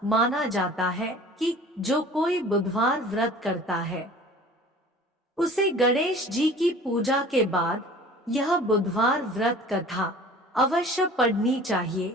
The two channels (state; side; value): normal; both; correlation 0.45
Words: माना जाता है कि जो कोई बुधवार व्रत करता है उसे गणेश जी की पूजा के बाद यह बुधवार व्रत कथा अवश्य पढ़नी चाहिए।